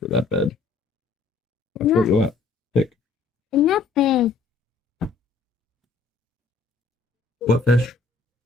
that bed. That's what you want. Pick. It's not bad. What fish?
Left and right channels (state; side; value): quieter; right; 4.4 dB